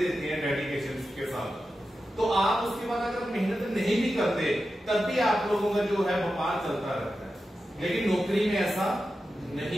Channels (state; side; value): normal; both; correlation 0.91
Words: हैं डेडिकेशन के साथ, तो आप उसके बाद अगर मेहनत नहीं भी करते तब भी आप लोगों का जो है व्यापार चलता रहता है। लेकिन नौकरी में ऐसा